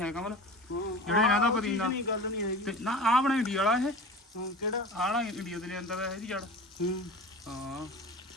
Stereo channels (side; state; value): both; normal; correlation 0.35